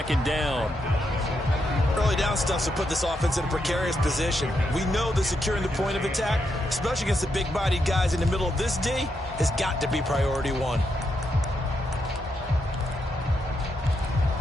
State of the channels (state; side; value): normal; both; correlation 0.81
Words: down. Early down stuff to put this offense in a precarious position. We know that securing the point of attack, especially against the big-bodied guys in the middle of this D, has got to be priority 1.